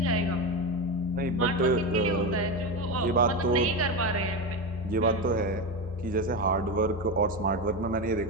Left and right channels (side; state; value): both; normal; correlation 0.17